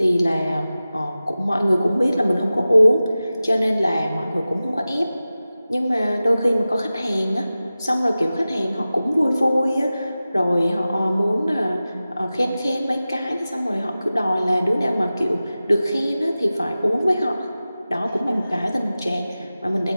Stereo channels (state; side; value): inverted; both; correlation -0.95